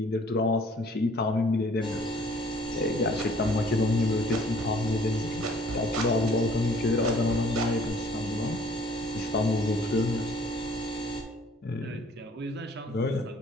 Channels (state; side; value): normal; both; correlation 0.56